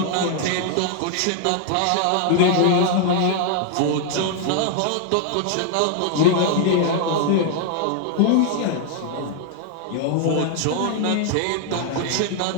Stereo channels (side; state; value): both; different; correlation 0.00